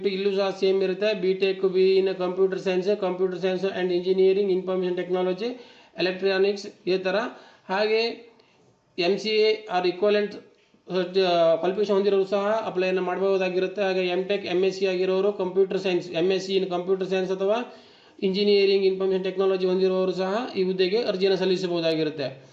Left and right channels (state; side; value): identical; both; correlation 1.00